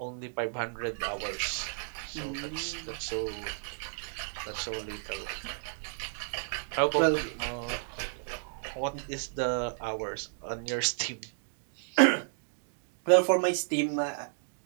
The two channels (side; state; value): left; silent; digital silence